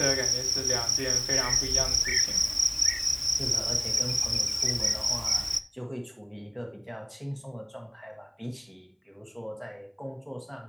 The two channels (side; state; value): both; identical; correlation 1.00